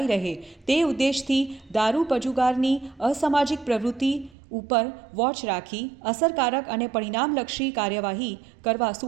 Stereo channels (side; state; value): left; drops out; at 4.4 s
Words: રહે તે ઉદ્દેશથી દારૂ પજુગારની અસામાજિક પ્રવૃત્તિ ઉપર વોચ રાખી અસરકારક અને પરિણામલક્ષી કાર્યવાહી કરવા